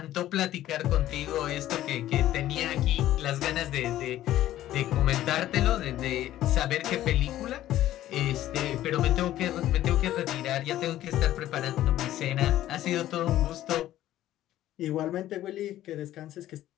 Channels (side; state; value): right; quieter; 13.6 dB